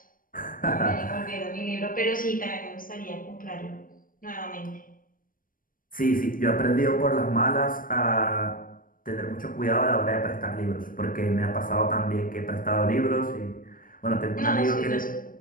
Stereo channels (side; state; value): right; late; 0.40 ms